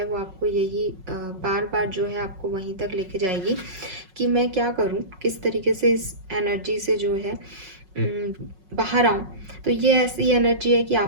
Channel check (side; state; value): left; late; 5.4 ms